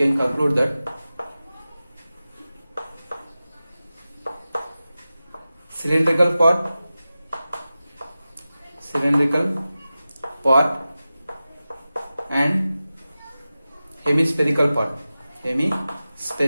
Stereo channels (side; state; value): both; inverted; correlation -0.95